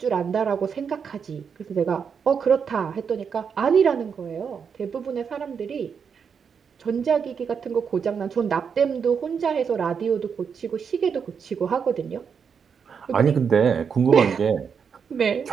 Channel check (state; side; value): quieter; left; 6.6 dB